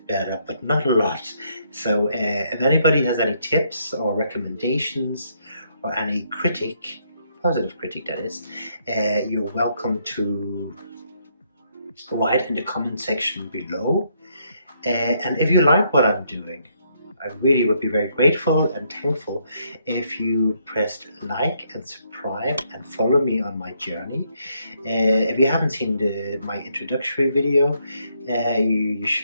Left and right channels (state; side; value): inverted; both; correlation -0.73